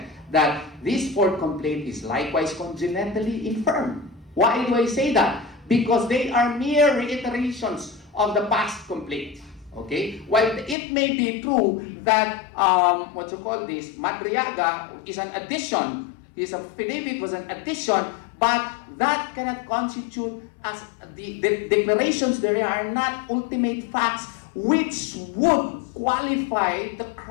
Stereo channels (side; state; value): right; drops out; at 10.8 s